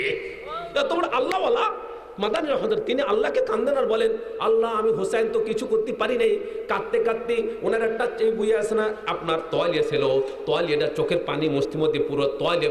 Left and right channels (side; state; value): both; identical; correlation 1.00